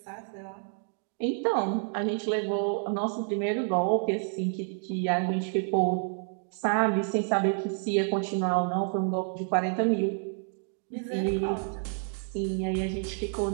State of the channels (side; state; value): left; silent; 58 dB below the other